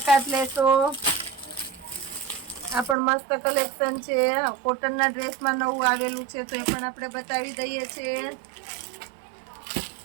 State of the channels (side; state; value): left; drops out; at 3.0 s